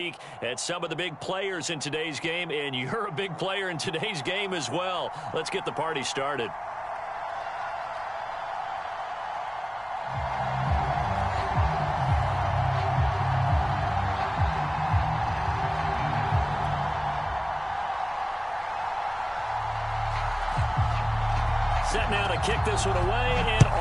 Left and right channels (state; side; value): identical; both; correlation 1.00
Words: at some of the big players in today's game, and you're a big player in today's game as well. Let's get the party started. Set now to kick this one away, and